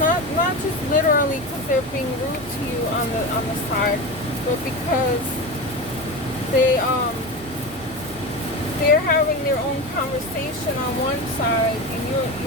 not just literally because they're being rude to you on the side, but because they're having their own conversation on one side and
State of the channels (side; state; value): both; normal; correlation 0.24